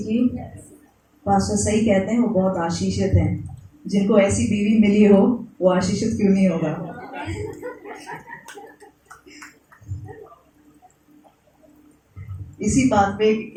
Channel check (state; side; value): identical; both; correlation 1.00